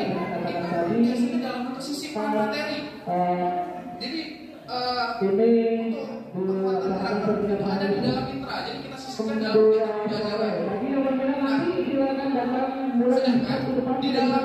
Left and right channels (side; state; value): both; identical; correlation 1.00